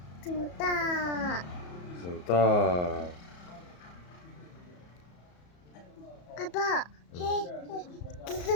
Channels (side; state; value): right; late; 34 ms